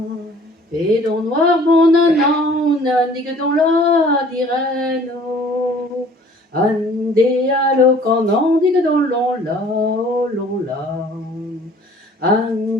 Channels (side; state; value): both; normal; correlation 0.53